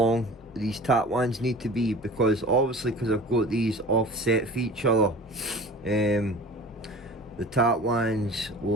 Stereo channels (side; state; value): both; normal; correlation 0.41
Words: these tap wands need to be, because obviously because I've got these offset for each other, the tap wands